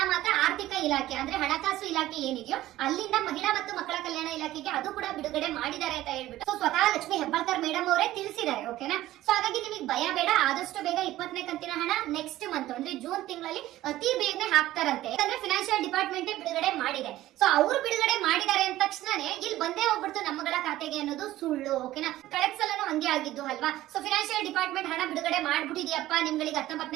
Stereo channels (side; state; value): left; quieter; 15.2 dB